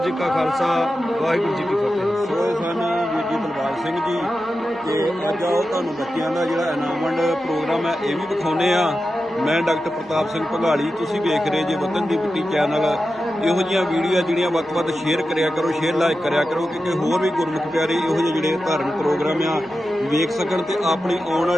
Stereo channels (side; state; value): both; normal; correlation 0.91